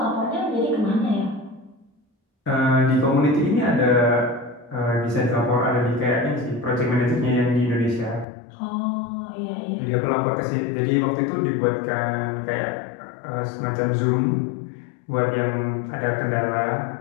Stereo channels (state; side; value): drops out; right; at 8.2 s